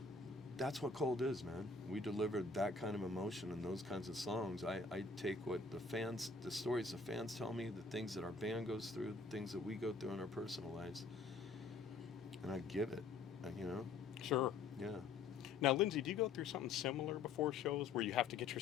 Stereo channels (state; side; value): quieter; right; 4.2 dB